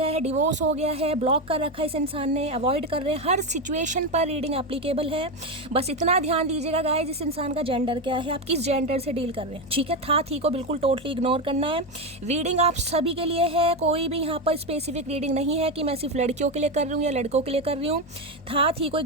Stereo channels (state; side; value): normal; both; correlation 0.12